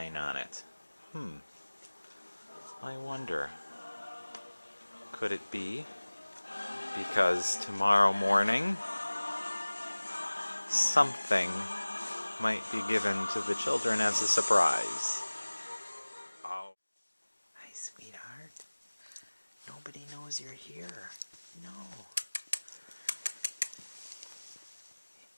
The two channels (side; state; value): both; inverted; correlation -1.00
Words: on it? I wonder. Could it be because tomorrow morning something might be given to the children as a surprise? Oh. Hi, sweetheart. Nobody knows you're here. No.